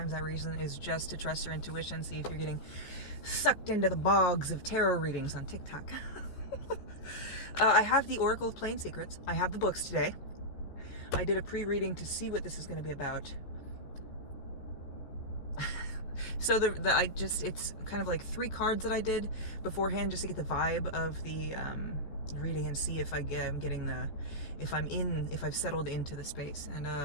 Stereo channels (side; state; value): right; late; 14 ms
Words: that reason is just to trust your intuition, see if you're getting sucked into the bogs of tarot readings on TikTok. I have the Oracle of Plain Secrets. I have the books today. I did a pre-reading to see what this is going to be about. So it's kind of like 3 cards that I did beforehand just to get the vibe of the reading and see if if I've settled into the space.